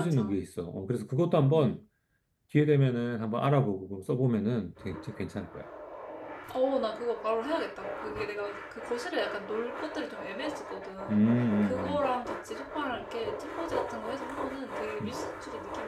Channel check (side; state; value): both; identical; correlation 1.00